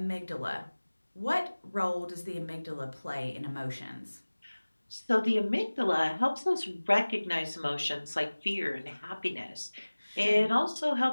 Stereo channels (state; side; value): inverted; both; correlation -1.00